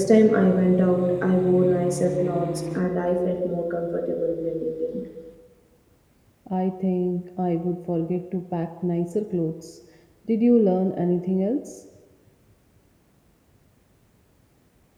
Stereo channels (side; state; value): both; identical; correlation 1.00